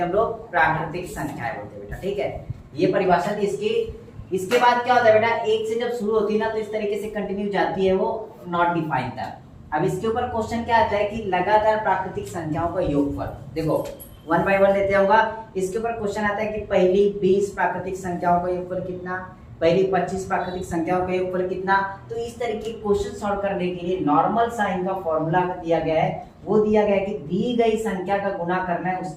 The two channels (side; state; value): both; identical; correlation 1.00